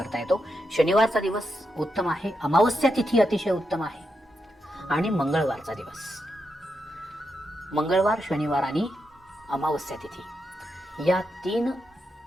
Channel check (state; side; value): normal; both; correlation 0.84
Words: येतो. शनिवारचा दिवस उत्तम आहे. अमावस्या तिथी अतिशय उत्तम आहे. आणि मंगळवारचा दिवस, मंगळवार, शनिवार आणि अमावस्या तिथी या 3